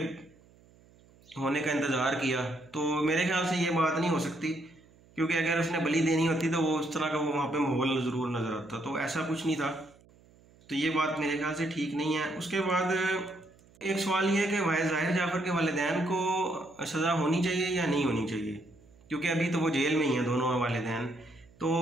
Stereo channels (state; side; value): noise; right; hum, 28 dB below the sound